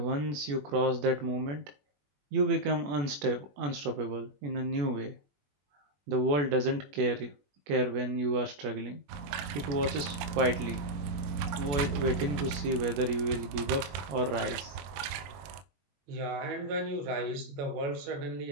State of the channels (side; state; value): left; late; 21 ms